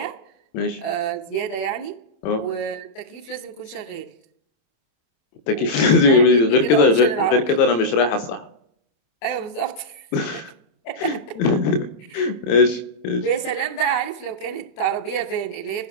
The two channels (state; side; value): late; right; 26 ms